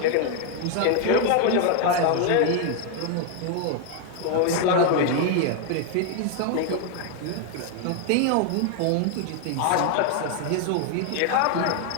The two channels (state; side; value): different; both; correlation 0.00